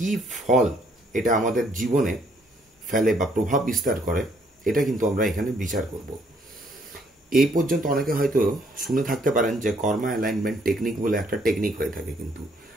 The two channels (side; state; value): both; normal; correlation 0.67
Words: ফল এটা আমাদের জীবনে ফেলে বা প্রভাব বিস্তার করে, এটা কিন্তু আমরা এখানে বিচার করব। এই পর্যন্ত অনেকে হয়তো শুনে থাকতে পারেন যে কর্মা অ্যালাইনমেন্ট টেকনিক বলে একটা টেকনিক হয়ে থাকে, কিন্তু